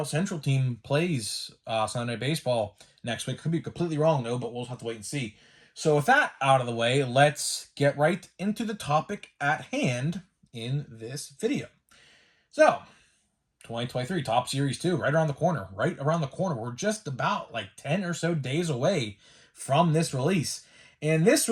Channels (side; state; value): both; identical; correlation 1.00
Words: Central team plays Sunday Night Baseball next week. Could be completely wrong, though, but we'll have to wait and see. So with that out of the way, let's get right into the topic at hand in this video. So, 2023 Top Series 2, right around the corner. Right around the corner. We're just about like 10 or so days away from this release. And this